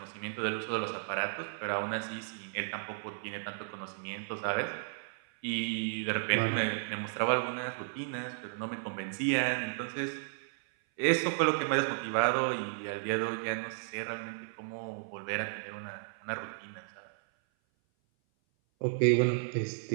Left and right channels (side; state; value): left; silent; 55 dB below the other